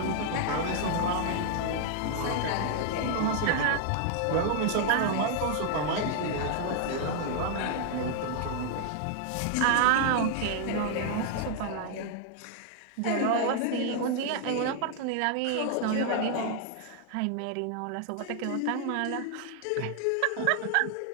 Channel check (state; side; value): different; both; correlation 0.00